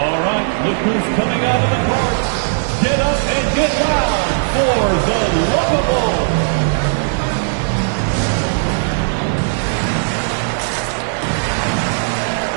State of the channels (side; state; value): left; silent; digital silence